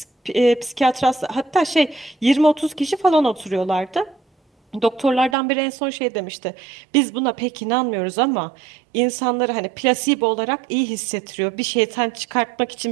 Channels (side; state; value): left; drops out; at 5.4 s